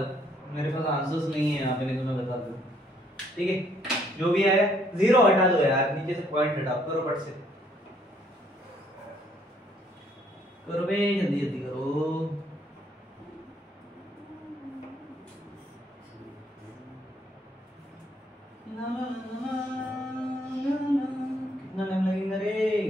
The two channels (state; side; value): normal; both; correlation 0.66